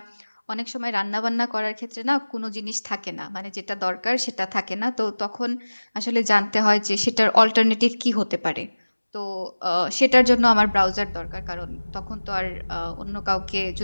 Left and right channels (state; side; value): inverted; both; correlation -1.00